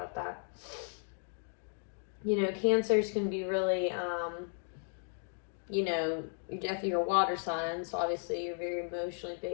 that. Cancers can be really, you're definitely your water sign, so obviously you're very emotionally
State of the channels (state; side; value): silent; right; 54 dB below the other